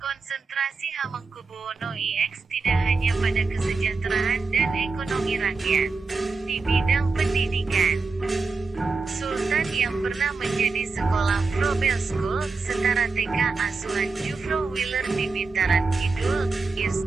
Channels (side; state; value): left; quieter; 4.2 dB